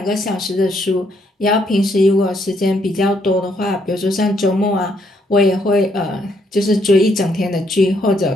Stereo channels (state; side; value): normal; both; correlation 0.72